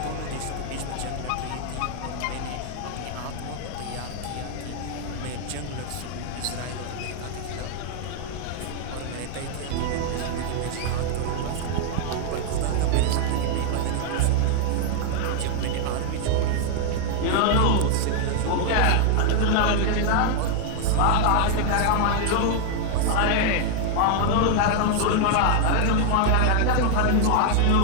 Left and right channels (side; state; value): both; different; correlation 0.00